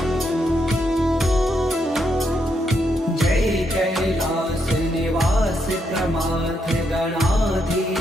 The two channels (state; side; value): normal; both; correlation 0.79